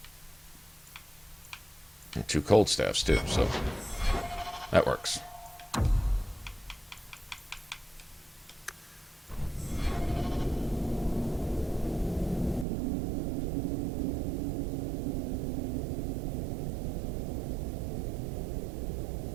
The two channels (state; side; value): drops out; left; at 12.7 s